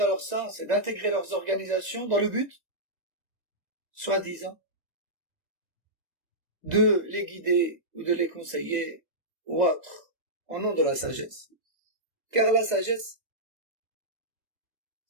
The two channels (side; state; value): left; late; 2.0 ms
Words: leur sens, et d'intégrer leurs organisations dans le but, soi-disant, de les guider ou de les conseiller ou autre, au nom de la sagesse. Car la sagesse,